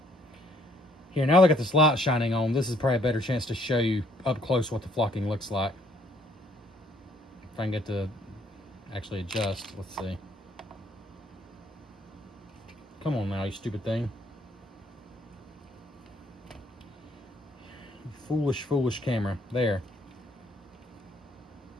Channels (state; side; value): normal; both; correlation 0.64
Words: Here, now that I got this light shining on, this is probably a better chance to show you up close what the flocking looks like. If I can get to actually adjust, let's see. Come on now, you stupid thing. Foolish, foolish camera. There.